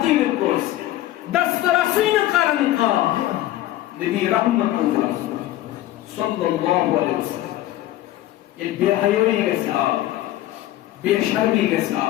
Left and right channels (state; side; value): quieter; right; 14.6 dB